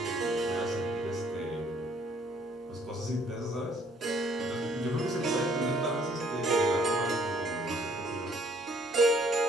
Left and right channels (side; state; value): both; normal; correlation 0.63